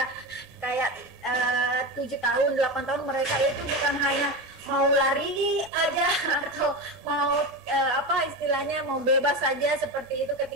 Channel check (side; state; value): both; normal; correlation 0.21